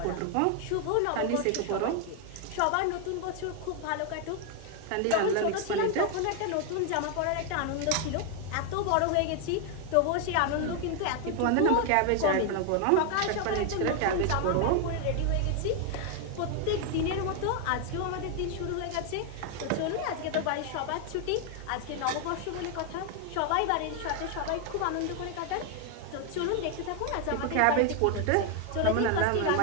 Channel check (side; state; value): both; different; correlation 0.01